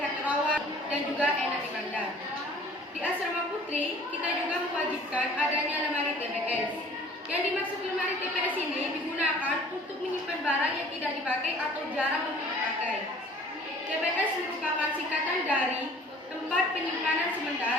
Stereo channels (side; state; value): both; normal; correlation 0.51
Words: rawat dan juga enak dipandang. Di Asrama Putri, kita juga mewajibkan adanya lemari TPS. Yang dimaksud lemari TPS ini digunakan untuk menyimpan barang yang tidak dipakai atau jarang untuk dipakai. TPS merupakan singkatan dari tempat penyimpanan